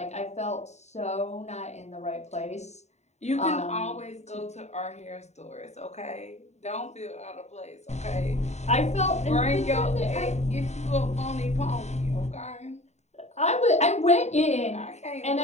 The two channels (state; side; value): late; right; 0.32 ms